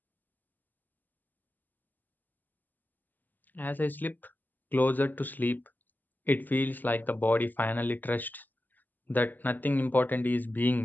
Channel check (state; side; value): late; right; 0.086 ms